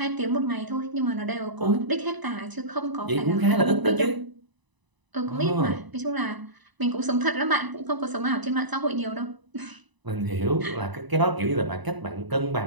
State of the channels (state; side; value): late; left; 1.0 ms